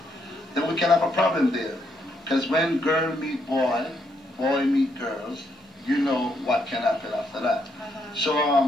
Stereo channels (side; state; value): both; normal; correlation 0.75